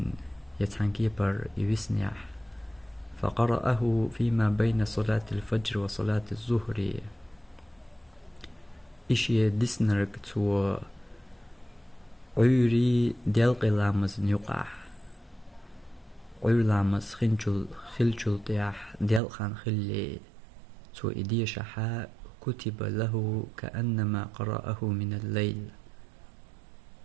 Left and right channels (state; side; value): drops out; left; at 19.2 s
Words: يتحنكيبر يوسنيح فقرأه فيما بين صلاة الفجر وصلاة الظهر إشي ديسنرك تو عيري ديالق لامز نيقع عير لامز خلجل طياح ديالقان خلي تو إديشة كتب له كأنما قرأه من الليل